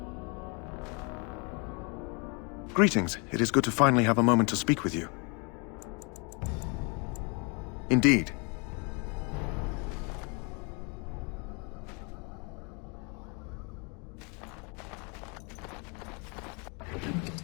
Greetings. It is good to finally have a moment to speak with you. Indeed.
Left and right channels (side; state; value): right; quieter; 33.3 dB